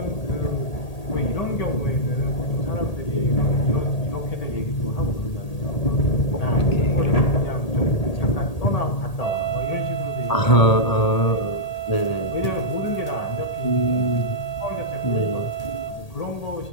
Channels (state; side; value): late; right; 1.8 ms